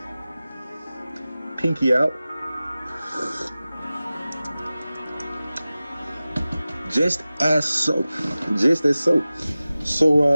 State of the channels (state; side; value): inverted; both; correlation -0.97